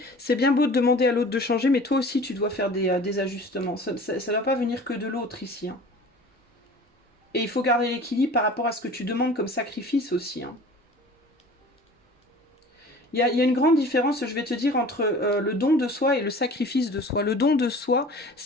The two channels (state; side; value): normal; both; correlation 0.43